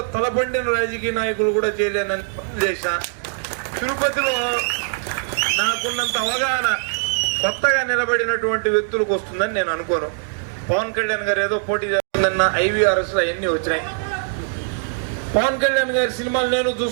తలబండిన రాజకీయ నాయకులు కూడా చేయలేనని చేసిన. తిరుపతిలో నాకున్నంత అవగాహన కొత్తగా నిలబడినటువంటి వ్యక్తులకు వస్తుందని నేను అనుకోను. పవన్ కళ్యాణ్ గారు ఏదో పోటీ చేస్తుందన్న IVRS అవన్నీ వచ్చినాయి. పవన్ కళ్యాణ్ గారి సినిమాలు నేను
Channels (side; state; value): left; silent; 65 dB below the other